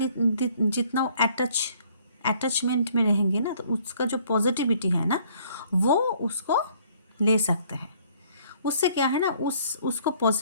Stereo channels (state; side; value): inverted; both; correlation -0.60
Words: जितना वो अटैचमेंट में रहेंगे ना, तो उसका जो पॉजिटिविटी है ना वो उसको ले सकते हैं। उससे क्या है ना, उसको